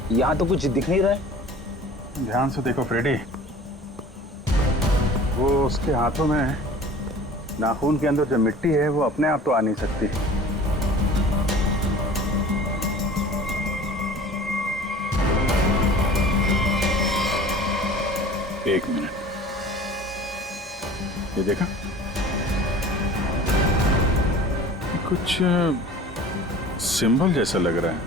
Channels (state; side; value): normal; both; correlation 0.43